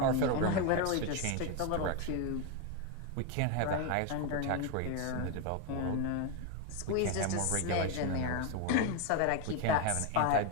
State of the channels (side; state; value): both; different; correlation 0.02